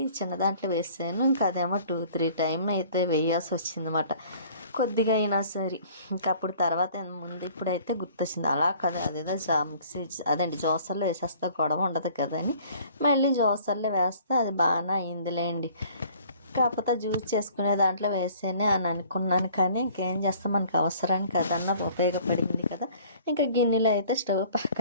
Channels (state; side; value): inverted; both; correlation -0.53